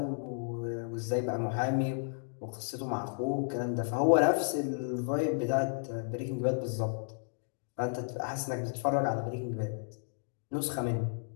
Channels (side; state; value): right; silent; digital silence